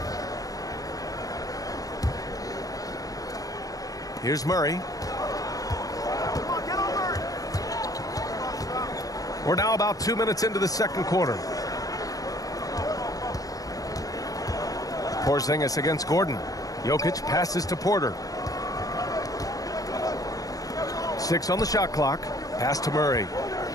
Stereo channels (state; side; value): late; right; 0.17 ms